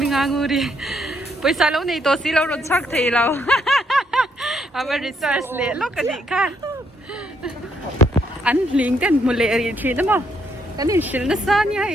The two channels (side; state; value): both; normal; correlation 0.73